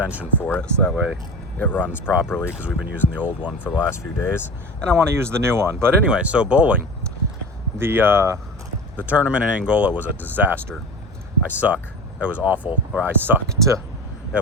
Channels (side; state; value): both; normal; correlation 0.31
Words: for it so that way it runs properly because we've been using the old one for the last few days and I want to use the new one. But anyway, so bowling. The tournament in Angola was a disaster. I suck. It was awful, or I sucked. It